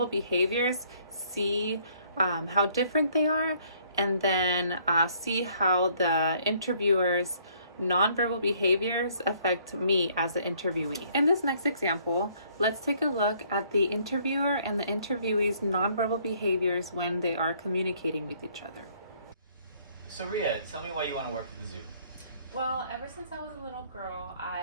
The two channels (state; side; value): inverted; both; correlation -0.63